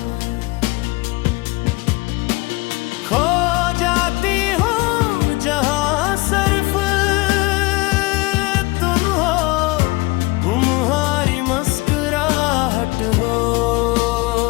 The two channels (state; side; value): quieter; right; 23.5 dB